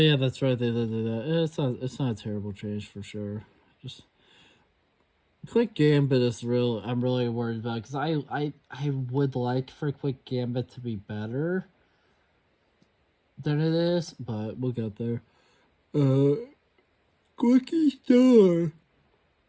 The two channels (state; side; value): identical; both; correlation 1.00